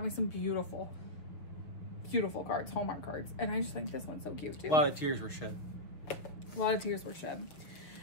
me some beautiful, beautiful cards, Hallmark cards. And I just think this one's so cute too. A lot of tears were shed. A lot of tears were shed.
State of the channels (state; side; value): late; right; 6.2 ms